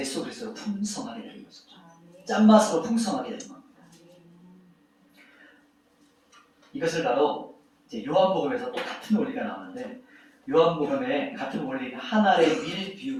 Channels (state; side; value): identical; both; correlation 1.00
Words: 그리스도로 풍성하게 되는 거죠. 짠맛으로 풍성하게 되는 겁니다. 이것을 바로 이제 요한복음에서 또 같은 원리가 나오는데, 요한복음에 같은 원리 하나의 밀